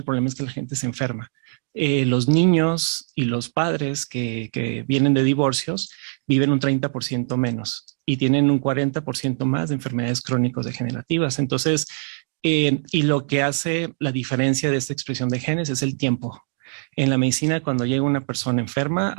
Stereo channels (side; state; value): left; silent; digital silence